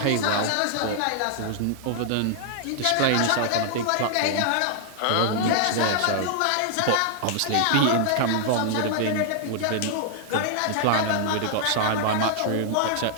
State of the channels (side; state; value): both; different; correlation -0.01